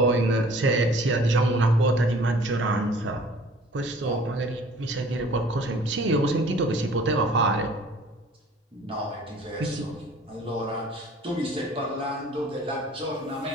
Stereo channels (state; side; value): normal; both; correlation 0.50